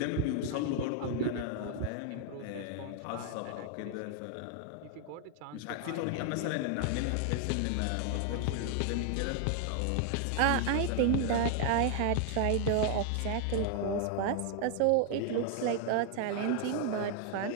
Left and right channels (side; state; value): both; different; correlation 0.00